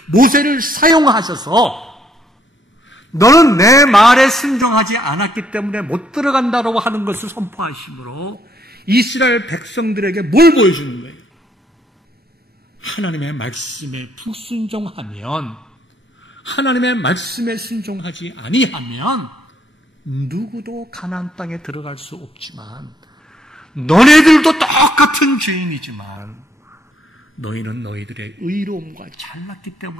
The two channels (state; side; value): normal; both; correlation 0.70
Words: 모세를 사용하셔서 너는 내 말에 순종하지 않았기 때문에 못 들어간다고 하는 것을 선포하심으로 이스라엘 백성들에게 뭘 보여주는 거예요? 하나님의 말씀에 불순종하면, 하나님의 말씀에 순종하지 아니하면 누구도 가나안 땅에 들어갈 수 없지만 너네들도 똑같은 죄인이지만 너희는 너희들의 의로움과 잘났기